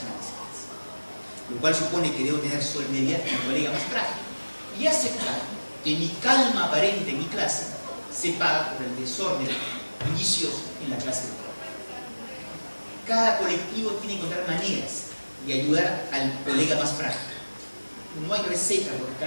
lo cual supone que debo tener solidaridad con el colega más frágil y aceptar que mi calma aparente en mi clase se paga por el desorden bullicioso en la clase de trabajo. Cada colectivo tiene que encontrar maneras de ayudar al colega más frágil. No hay receta, porque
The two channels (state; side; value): inverted; both; correlation -1.00